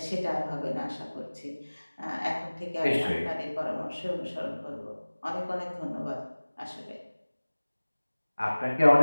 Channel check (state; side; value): inverted; both; correlation -1.00